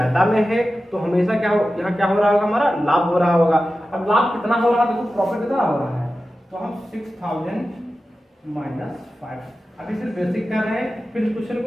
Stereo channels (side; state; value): both; normal; correlation 0.93